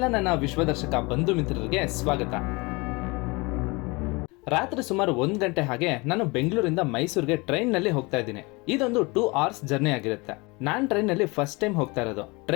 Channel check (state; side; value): quieter; right; 26.1 dB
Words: ನನ್ನ ವಿಶ್ವದರ್ಶಕ ಬಂಧು ಮಿತ್ರರಿಗೆ ಸ್ವಾಗತ. ರಾತ್ರಿ ಸುಮಾರು 1 ಗಂಟೆ ಹಾಗೆ ನಾನು ಬೆಂಗಳೂರಿಂದ ಮೈಸೂರಿಗೆ ಟ್ರೈನ್ ನಲ್ಲಿ ಹೋಗ್ತಾ ಇದ್ದೀನಿ. ಇದೊಂದು 2 hours ಜರ್ನಿ ಆಗಿರುತ್ತೆ. ನಾನ್ ಟ್ರೈನ್ ನಲ್ಲಿ ಫಸ್ಟ್ ಟೈಮ್ ಹೋಗ್ತಾ ಇರೋದು.